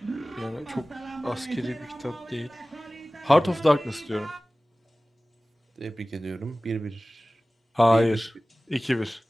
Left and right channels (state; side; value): normal; both; correlation 0.98